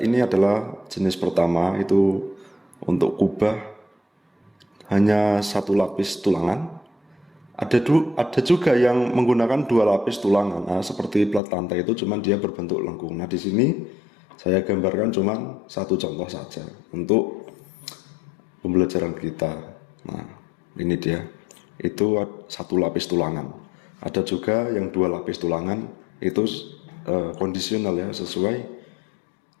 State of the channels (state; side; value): drops out; right; at 11.4 s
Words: adalah jenis pertama, itu untuk kubah hanya 1 lapis tulangan. Ada juga yang menggunakan 2 lapis tulangan. Nah, seperti plat lantai itu cuman dia berbentuk lengkung. Nah, di sini saya gambarkan cuman 1 contoh saja untuk pembelajaran kita. Nah, ini dia. Itu 1 lapis tulangan. Ada juga yang 2 lapis tulangan, itu kondisional ya, sesuai